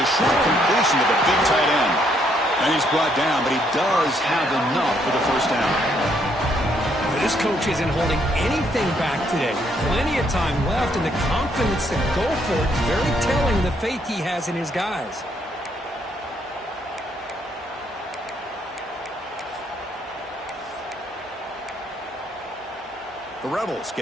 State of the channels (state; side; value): normal; both; correlation 0.71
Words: a short completion to the big tight end. And he's brought down, but he does have enough for the 1st down. This coach isn't holding anything back today. Plenty of time left, and the confidence to go for it is very telling, the faith he has in his guys. The Rebels